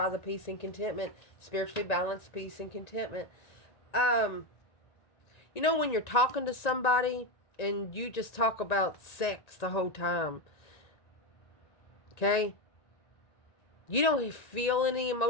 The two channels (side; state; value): right; late; 1.9 ms